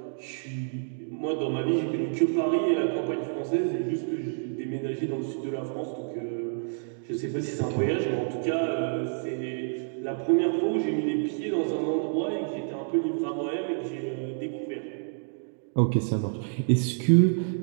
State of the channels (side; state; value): left; silent; digital silence